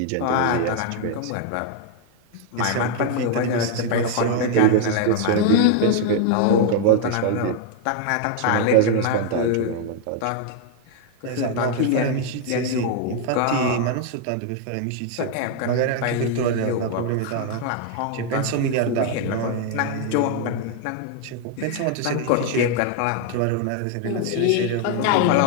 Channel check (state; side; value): different; both; correlation 0.00